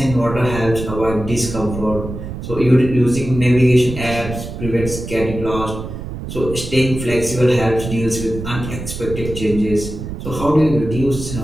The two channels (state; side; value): noise; right; rumble, 8 dB below the sound